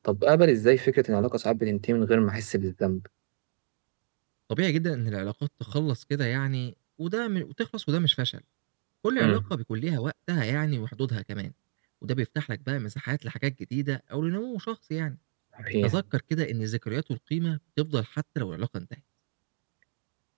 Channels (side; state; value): left; silent; digital silence